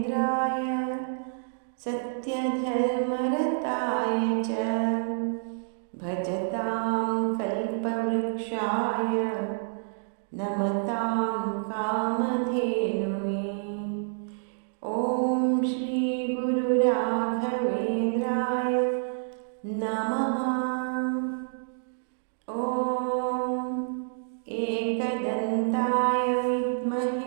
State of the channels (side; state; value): left; silent; digital silence